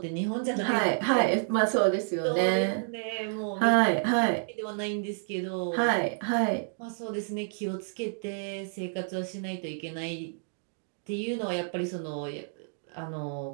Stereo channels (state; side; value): silent; left; digital silence